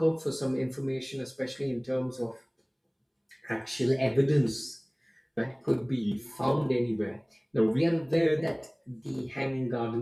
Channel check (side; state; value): both; identical; correlation 1.00